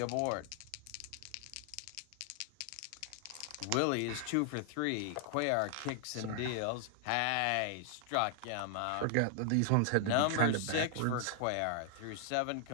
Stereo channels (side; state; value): both; different; correlation 0.00